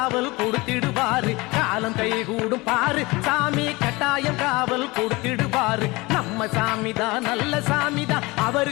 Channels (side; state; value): right; quieter; 23.2 dB